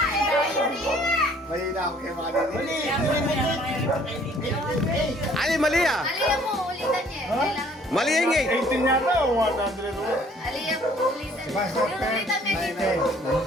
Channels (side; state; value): both; normal; correlation 0.58